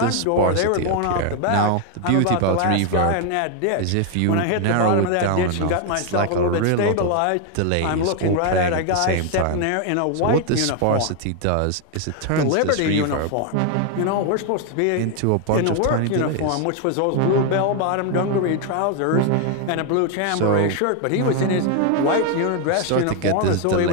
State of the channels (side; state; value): both; different; correlation 0.01